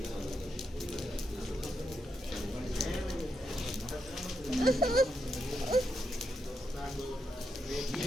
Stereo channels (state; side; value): normal; both; correlation 0.82